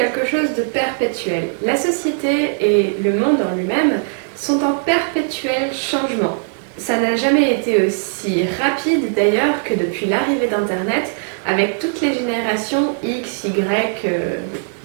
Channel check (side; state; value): left; silent; digital silence